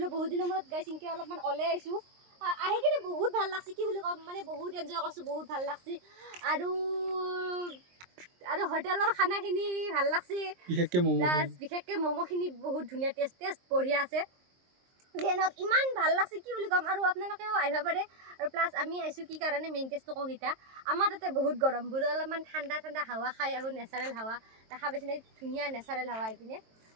বহুত দিনৰ মূৰত গাইজ ইনকৈ অলপমান ওলাই আহিছোঁ আহি কিনে বহুত ভাল লাগছে কি বুলি ক'ম মানে বহুত এনজয় কৰিছোঁ বহুত ভাল লাগছে আৰু হোটেলৰ খানাখিনি ভাল লাগছে বিশেষকৈ ম'ম'খিনি বহুত ধুনীয়া টেষ্ট বঢ়িয়া আছে যেনক ইমান ভাল লাগছে কি বুলি ক'ম আৰু আপোনালোকেও আহিব পাৰে আৰু প্লাছ আমি আহিছোঁ কি কাৰণে মেইন টেষ্টটো কওঁ এতিয়া আমাৰ তাতে বহুত গৰম বোলো অলপমান ঠাণ্ডা হাৱা খাই আহোঁ নেচাৰেল হাৱা দেখা পাইছেনে ধুনীয়া নেচাৰেল হাৱা এইপিনে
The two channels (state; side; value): late; left; 23 ms